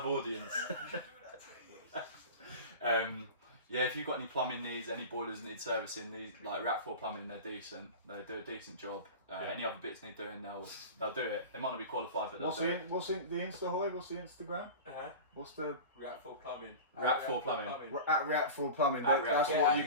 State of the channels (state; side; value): inverted; both; correlation -0.32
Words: audience. Yeah, if you've got any plumbing needs, any boilers need servicing, these like React 4 Plumbing, they're decent. They do a decent job. Any other bits need doing, they'll do it. They might not be qualified, but they'll do it. What's the Insta, Hoy? What's the Instagram? What's the React 4 Plumbing. React 4 Plumbing. at React 4 Plumbing? At That's React what 4.